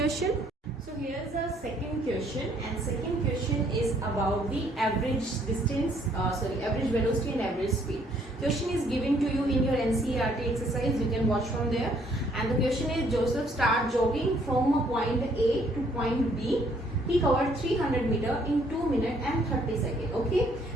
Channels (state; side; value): normal; both; correlation 0.65